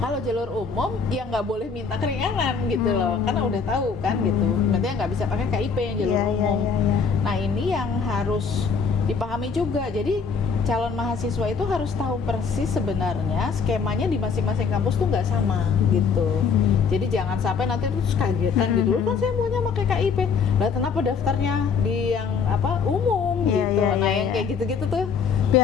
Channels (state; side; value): quieter; right; 5.6 dB